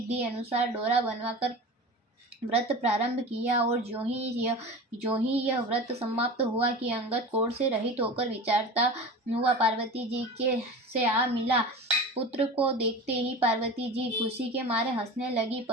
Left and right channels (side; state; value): both; normal; correlation 0.32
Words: अनुसार डोरा बनवाकर व्रत प्रारंभ किया और जो ही यह व्रत समाप्त हुआ कि अंगद कोढ़ से रहित होकर विचारता हुआ पार्वती जी के से आ मिला। पुत्र को देखते ही पार्वती जी खुशी के मारे हंसने लगी,